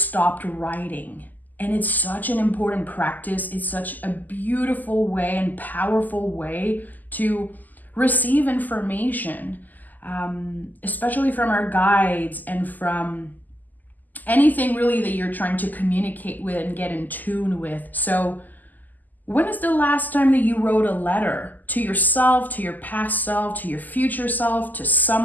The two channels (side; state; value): right; late; 0.084 ms